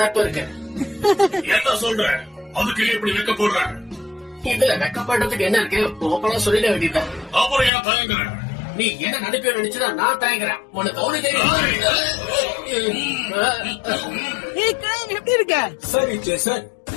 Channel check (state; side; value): drops out; right; at 7.7 s